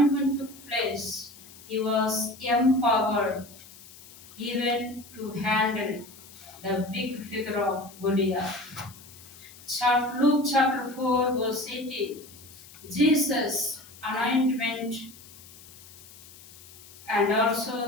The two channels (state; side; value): noise; left; hiss, 20 dB below the sound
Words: took place, he was empowered even to handle the big figure of Goliath. Luke chapter 4, verse 18. Jesus' anointment and